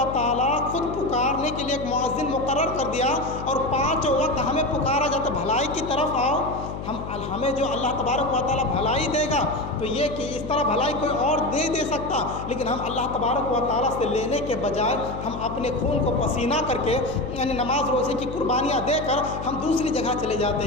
تعالیٰ خود پکارنے کے لیے ایک مؤذن مقرر کر دیا اور 5 وقت ہمیں پکارا جاتا بھلائی کی طرف آؤ، ہمیں جو اللہ تبارک و تعالیٰ بھلائی دے گا تو یہ کہ اس طرح بھلائی کوئی اور نہیں دے سکتا، لیکن ہم اللہ تبارک و تعالیٰ سے لینے کے بجائے ہم اپنے خون کو پسینہ کر کے یعنی نماز روزے کی قربانیاں دے کر ہم دوسری جگہ چلے جاتے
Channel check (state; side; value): noise; left; hum, 8 dB below the sound